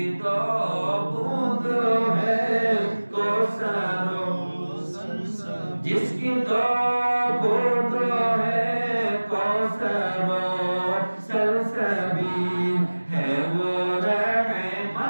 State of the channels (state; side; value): inverted; both; correlation -1.00